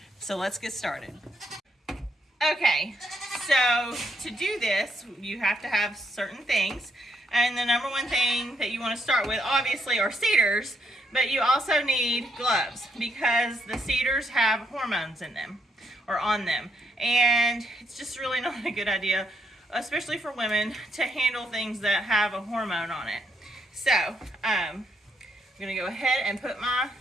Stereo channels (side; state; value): both; normal; correlation 0.76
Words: So let's get started. Okay, so to do this, you have to have certain things, and the number one thing that you want to start with obviously are cedars, but you also need gloves because the cedars have hormones in them or on them, and it's just really not a good idea, especially for women, to handle things that have a hormone on it. So I'm gonna go ahead and put my